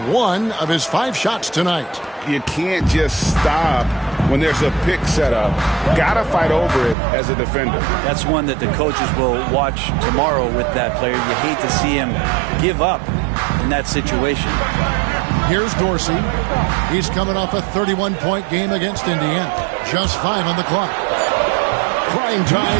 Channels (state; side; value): drops out; left; at 7.0 s